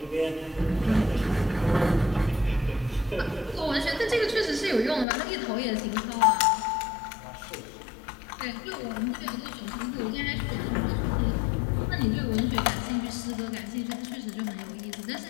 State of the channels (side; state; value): right; drops out; at 5.1 s